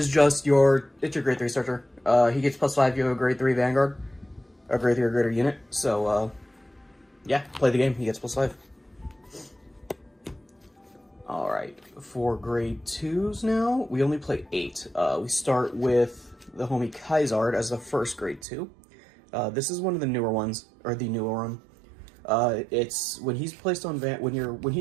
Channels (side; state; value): left; drops out; at 18.4 s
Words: just your grade 3 starter. He gets +5 if you have a grade 3 Vanguard, a grade 3 or greater unit. So, yeah, play the game, he gets +5. Alright, for grade 2s now, we only play 8. We start with the homie Kaisard as the first grade 2. This is one of the newer ones, or the newer one. It's when he's placed on when